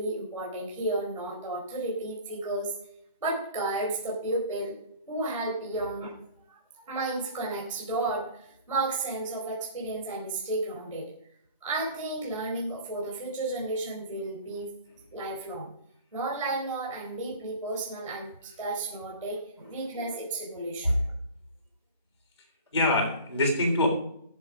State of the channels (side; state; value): both; inverted; correlation -0.40